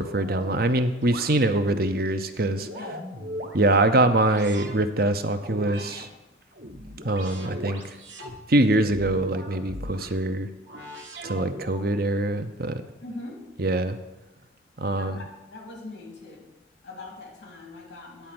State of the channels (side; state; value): both; normal; correlation 0.37